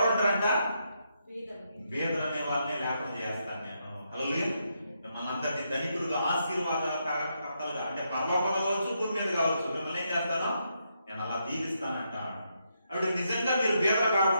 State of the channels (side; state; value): both; inverted; correlation -0.80